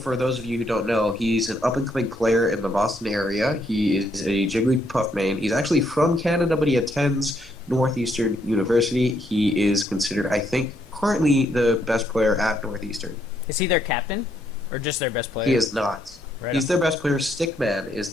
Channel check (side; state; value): both; normal; correlation 0.73